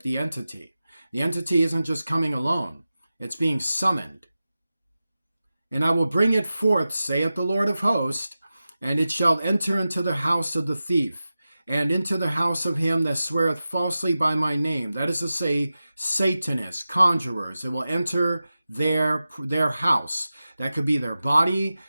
the entity. The entity isn't just coming alone. It's being summoned. And I will bring it forth, saith the Lord of hosts, and it shall enter into the house of the thief, and into the house of him that sweareth falsely by my name. That is to say, Satanists, conjurers. It will enter their house. That could be their body,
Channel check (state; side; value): inverted; both; correlation -0.94